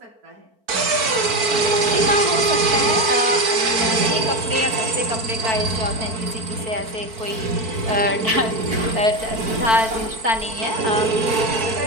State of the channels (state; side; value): late; left; 4.5 ms